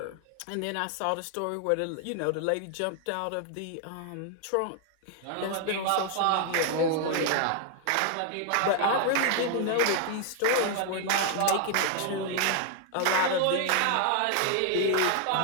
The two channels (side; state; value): both; different; correlation 0.00